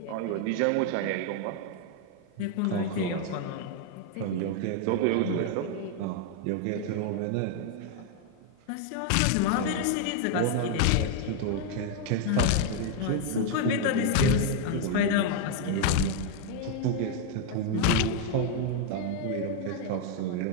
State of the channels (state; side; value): different; both; correlation 0.00